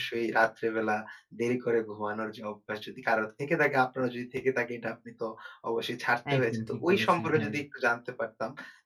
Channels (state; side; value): identical; both; correlation 1.00